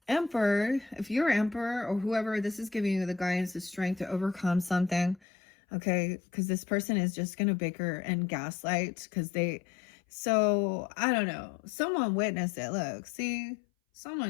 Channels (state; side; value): drops out; right; at 5.2 s